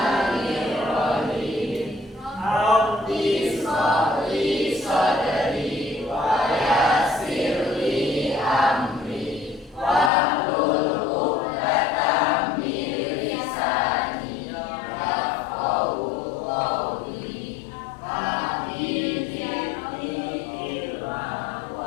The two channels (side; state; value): right; drops out; at 10.1 s